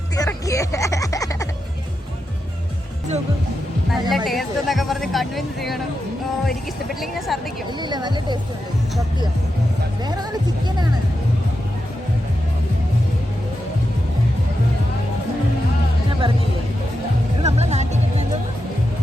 നല്ല ടേസ്റ്റ് എന്നൊക്കെ പറഞ്ഞ് കൺവിൻസ് ചെയ്യണം. ഓ, എനിക്ക് ഇഷ്ടപ്പെട്ടില്ലെങ്കിൽ ഞാൻ ഛർദ്ദിക്കും. ഇല്ല നല്ല ടേസ്റ്റ് ഉണ്ട്, സത്യം. വേറെ നല്ല ചിക്കനാണ്. ഞാൻ പറഞ്ഞില്ലേ ഇത് നമ്മളെ നാട്ടിൽ കിട്ടുന്നത്.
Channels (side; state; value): both; normal; correlation 0.88